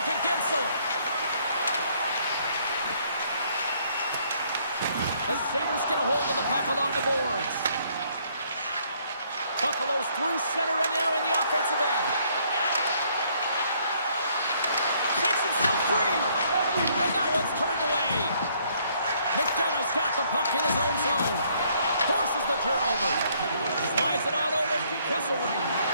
to Gensel. The Sabres get a hold of the puck along the boards. Buffalo's through center and now in the offensive end. Takes himself free. And that one's turned away. McDonough's got the puck in his own zone. Forces the turnover. Slides it on over to Kesselring.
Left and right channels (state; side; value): inverted; both; correlation -0.66